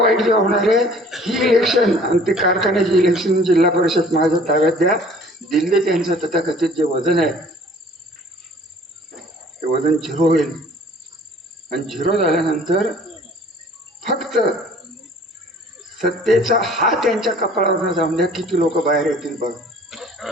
जे होणार आहे ही इलेक्शन, आणि ते कारखान्याची इलेक्शन जिल्हा परिषद माझ्या ताब्यात द्या. दिल्ली त्यांचं तथाकथित जे वजन आहे ते वजन 0 होईल, आणि 0 झाल्यानंतर फक्त सत्तेचा हात त्यांच्या कपाळावर जाऊन द्या. किती लोक बाहेर येतील बघ,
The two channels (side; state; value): both; normal; correlation 0.52